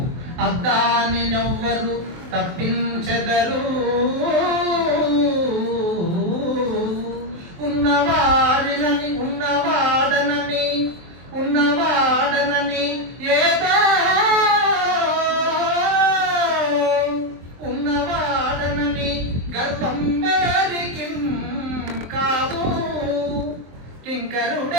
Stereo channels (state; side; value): late; left; 23 ms